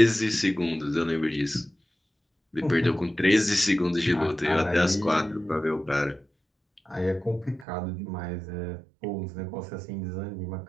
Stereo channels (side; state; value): left; drops out; at 7.7 s